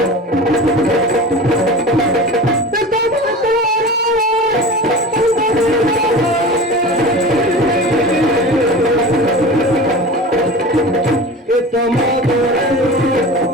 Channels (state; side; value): normal; both; correlation 0.34